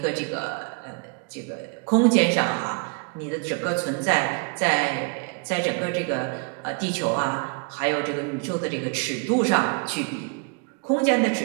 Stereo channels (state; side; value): quieter; left; 35.4 dB